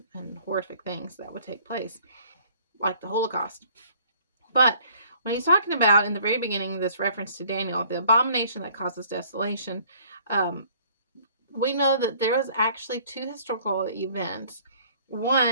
and horrific things that would take place, like the Holocaust. But when he's talking about in the very beginning, this reference to Daniel, the abomination that causes desolation, we know that there was actually two historical events.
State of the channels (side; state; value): both; inverted; correlation -0.56